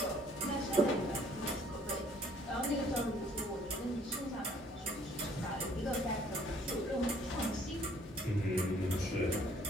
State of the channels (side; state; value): both; normal; correlation 0.60